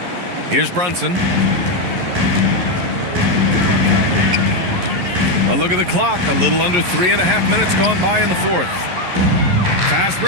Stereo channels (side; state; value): left; late; 11 ms